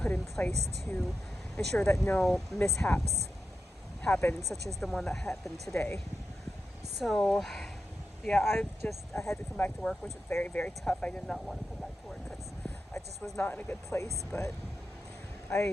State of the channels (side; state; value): both; normal; correlation 0.89